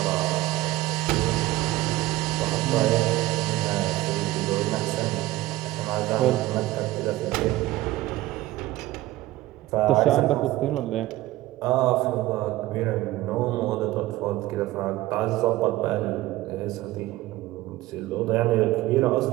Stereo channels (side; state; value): left; quieter; 17.3 dB